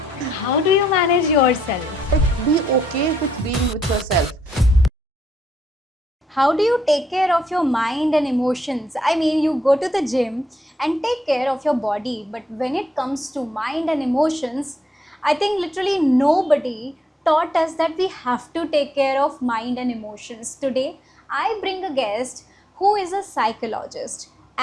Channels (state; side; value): normal; both; correlation 0.76